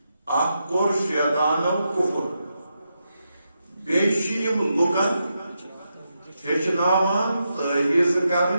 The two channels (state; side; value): inverted; both; correlation -0.85